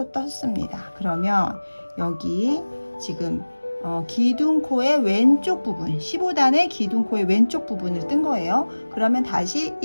떴습니다. 그러면 여기 지금 기둥코의 왼쪽 부분 15단의 기둥코의 왼쪽 부분을 뜬 거예요. 그러면 다시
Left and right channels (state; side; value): inverted; both; correlation -1.00